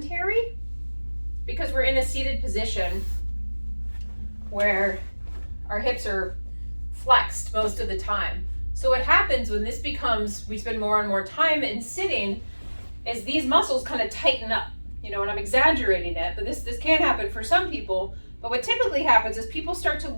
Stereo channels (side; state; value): both; inverted; correlation -1.00